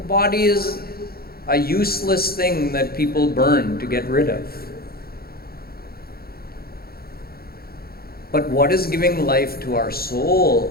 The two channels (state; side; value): late; right; 0.44 ms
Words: is a useless thing that people burn to get rid of. But what is giving life to our